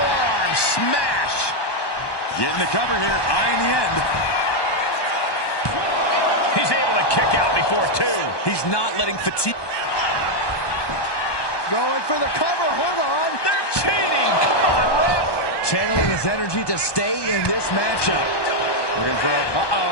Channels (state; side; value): late; right; 1.2 ms